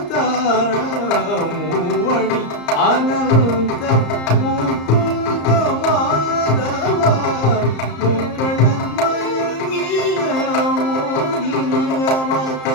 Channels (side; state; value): right; late; 34 ms